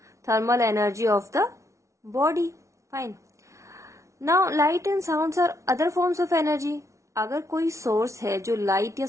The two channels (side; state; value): left; late; 0.14 ms